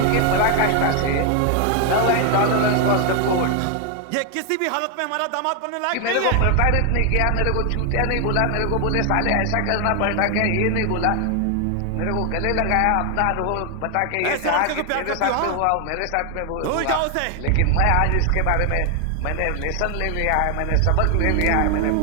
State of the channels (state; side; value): different; both; correlation 0.01